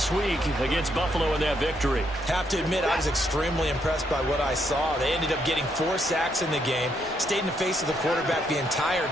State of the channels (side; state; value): both; normal; correlation 0.75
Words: week against Buffalo in that victory. Have to admit, I was extremely impressed by what I saw. They ended up getting 4 sacks in the game, stayed in the face of the quarterback the entire